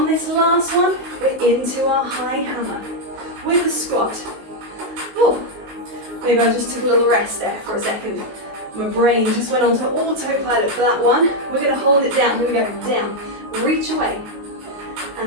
this last one, we're into our high hammer with the squat. Oh. Maybe I just took a little rest there for a second. My brain just went onto autopilot for that one. We're going to hold it down. Here we go. Down. Reach away.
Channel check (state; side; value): late; left; 19 ms